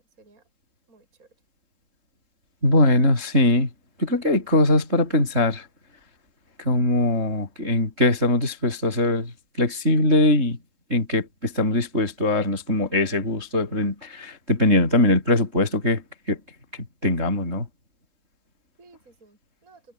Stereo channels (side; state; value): left; late; 3.7 ms